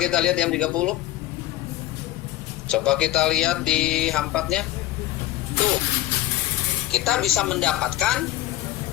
lihat yang 30. Coba kita lihat di H4-nya. Tuh. Kita bisa mendapatkan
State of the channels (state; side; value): quieter; right; 15.1 dB